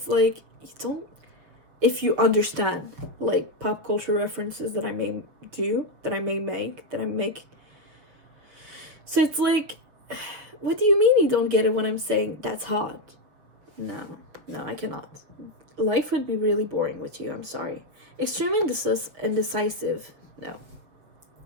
like, if you understand like pop culture references that I may make. So it's like, what do you mean you don't get it when I'm saying that's hot? No, I cannot. Life would be really boring with you. I'm sorry. Extremely indecisive. No.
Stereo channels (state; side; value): late; left; 6.9 ms